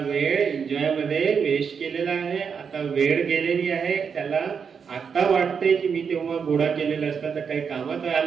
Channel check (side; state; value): left; quieter; 6.4 dB